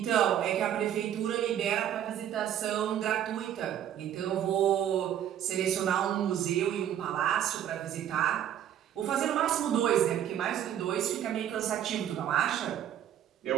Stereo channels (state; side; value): quieter; left; 10.5 dB